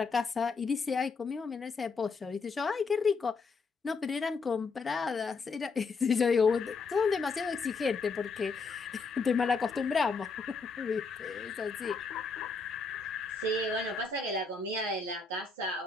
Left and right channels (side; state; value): right; quieter; 4.5 dB